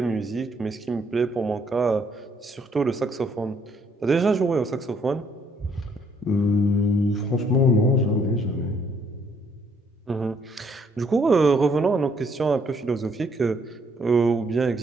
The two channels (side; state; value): both; normal; correlation 0.68